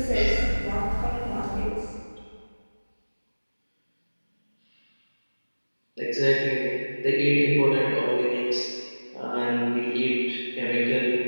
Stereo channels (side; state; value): both; inverted; correlation -1.00